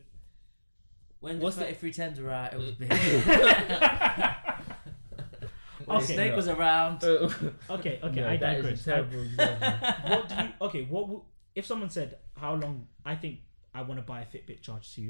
When the 3310s were out, it was big. Okay, Snake was around. Okay, no, I digress. That is a terrible example. If someone said, how long, I think I want to buy a Fitbit Charge 2.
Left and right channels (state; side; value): inverted; both; correlation -1.00